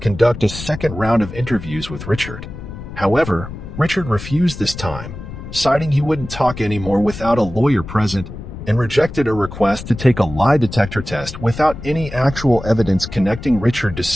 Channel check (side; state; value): left; noise; rumble, 11 dB below the sound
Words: a second round of interviews with Richard. However, Richard refused this time, citing he wouldn't talk anymore without a lawyer present, and rejected a request to take a lie detector test without any actual evidence connecting Richard to